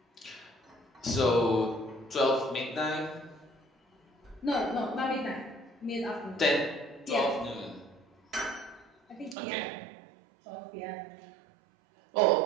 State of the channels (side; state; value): left; drops out; at 9.3 s